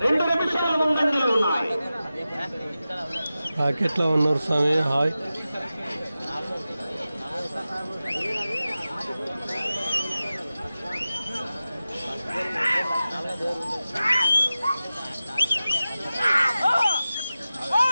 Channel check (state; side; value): inverted; both; correlation -0.94